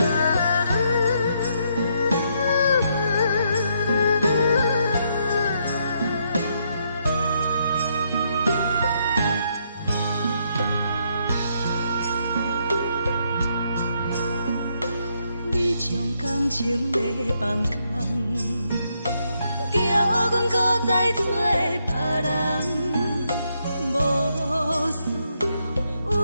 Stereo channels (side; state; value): both; inverted; correlation -0.76